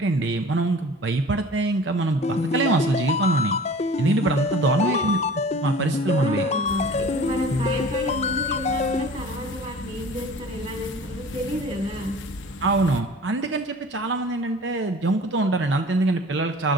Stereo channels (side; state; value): both; normal; correlation 0.43